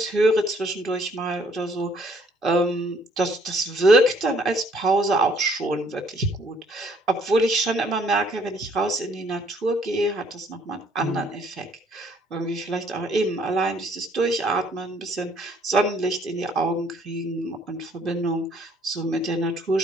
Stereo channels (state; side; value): normal; both; correlation 0.63